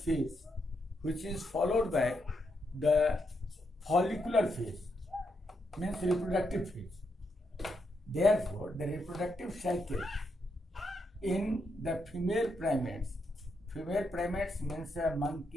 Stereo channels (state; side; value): normal; both; correlation 0.81